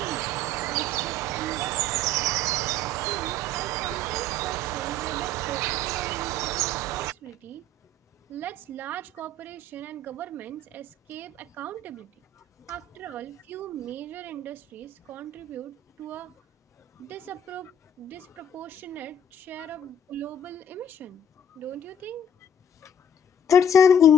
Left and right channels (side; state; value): both; normal; correlation 0.54